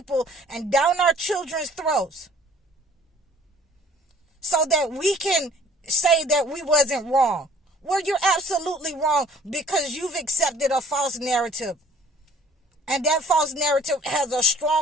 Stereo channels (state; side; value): normal; both; correlation 0.55